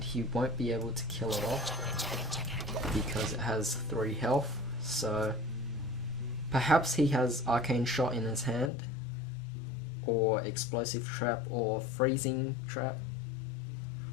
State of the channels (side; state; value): right; drops out; at 8.7 s